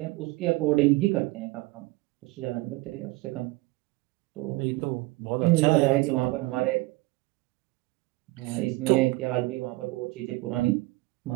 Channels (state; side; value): quieter; left; 21.3 dB